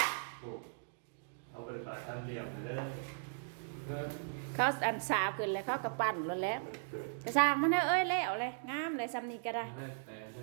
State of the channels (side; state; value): left; silent; digital silence